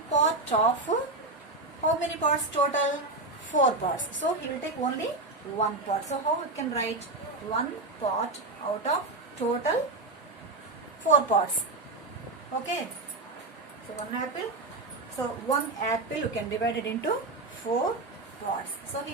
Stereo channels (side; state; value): left; quieter; 3.0 dB